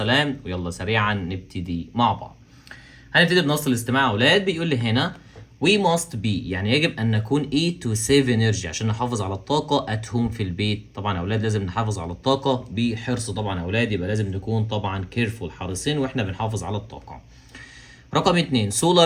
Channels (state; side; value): identical; both; correlation 1.00